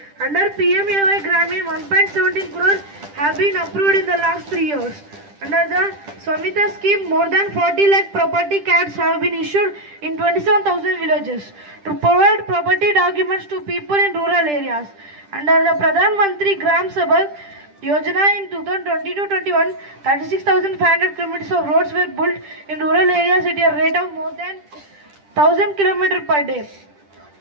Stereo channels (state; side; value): late; left; 10 ms